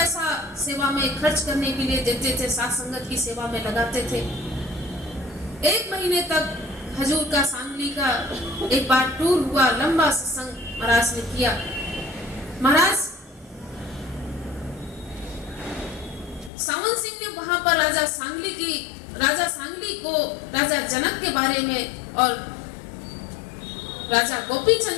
सेवा में खर्च करने के लिए देते थे, साथ संगत की सेवा में लगाते थे। 1 महीने तक हजूर का सांगली का एक बार टूर हुआ, लंबा सत्संग महाराज ने किया। महाराज सावन सिंह ने वहां पर राजा सांगली को राजा जनक के बारे में और राजा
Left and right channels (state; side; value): drops out; right; at 16.5 s